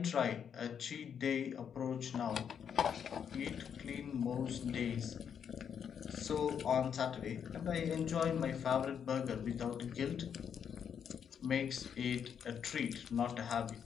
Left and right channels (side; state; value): right; quieter; 7.8 dB